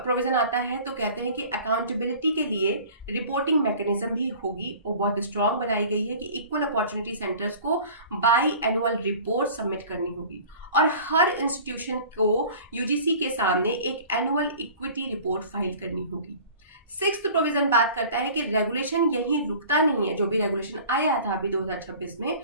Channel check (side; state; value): both; inverted; correlation -0.44